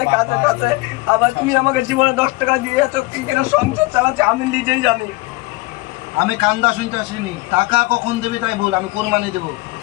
কাছে কাছে। আবার তুমি আমাকে জীবনে 10 টাকা দিয়েছো, কি করে সংসার চালাচ্ছি আমি নিজেই জানি। আমি কান্দা শুনতে আসিনি। টাকা কখন দেবে তাই বল, আমি কুরবানি দেবো।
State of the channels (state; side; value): quieter; right; 22.4 dB